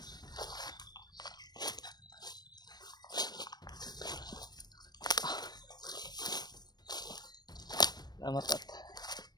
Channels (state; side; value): late; right; 0.19 ms